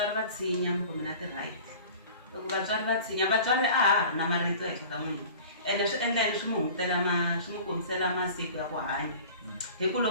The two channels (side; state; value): both; inverted; correlation -0.42